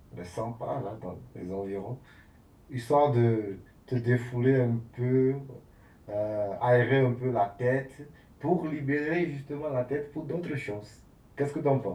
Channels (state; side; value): identical; both; correlation 1.00